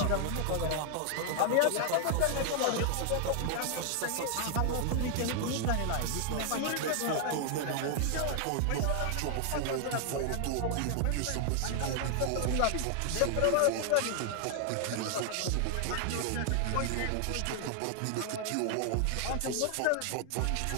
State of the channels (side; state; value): both; different; correlation 0.00